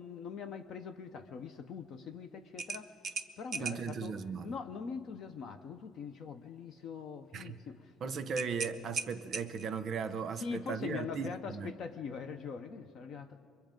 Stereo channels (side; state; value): both; normal; correlation 0.62